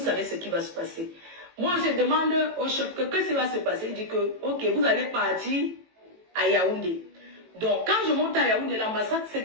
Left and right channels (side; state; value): left; late; 18 ms